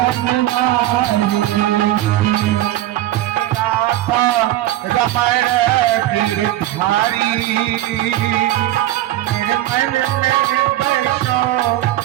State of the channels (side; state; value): left; quieter; 14.4 dB